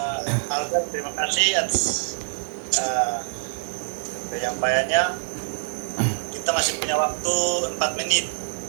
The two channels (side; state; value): left; silent; digital silence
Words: Albert, terima kasih atas penyampaiannya. Kita masih punya waktu 4 menit.